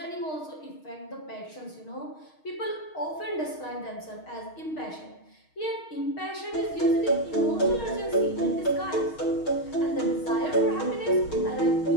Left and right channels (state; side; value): late; right; 6.4 ms